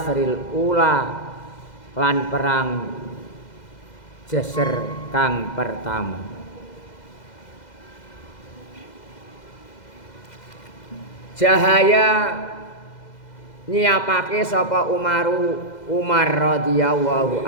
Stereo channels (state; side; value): late; right; 2.0 ms